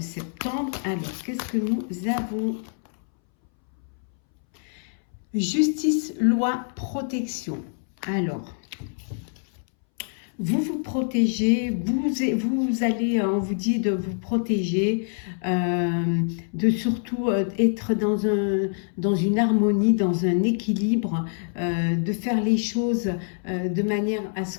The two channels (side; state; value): right; silent; 62 dB below the other